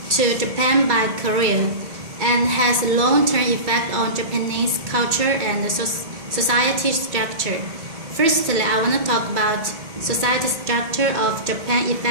to Japan by Korea and has a long-term effect on Japanese culture and society structure. Firstly, I want to talk about society structure of Japan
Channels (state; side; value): late; left; 2.2 ms